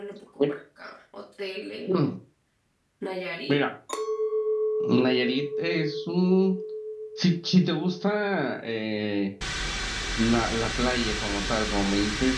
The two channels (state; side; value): identical; both; correlation 1.00